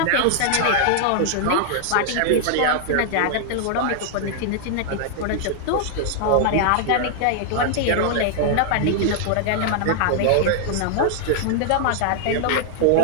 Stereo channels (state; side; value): different; both; correlation 0.00